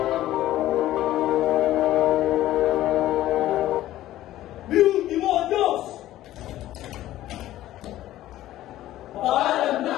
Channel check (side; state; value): right; quieter; 14.3 dB